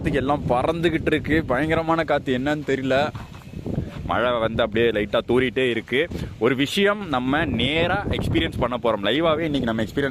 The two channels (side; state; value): both; identical; correlation 1.00